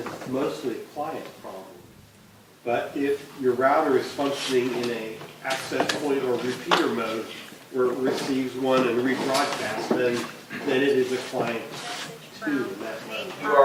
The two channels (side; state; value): both; identical; correlation 1.00